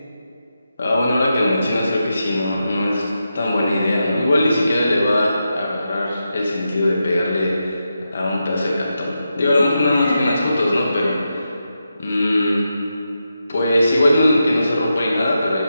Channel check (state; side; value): inverted; both; correlation -0.87